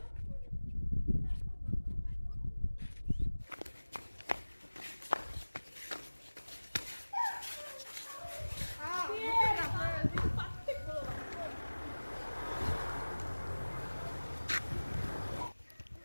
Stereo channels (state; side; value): inverted; both; correlation -1.00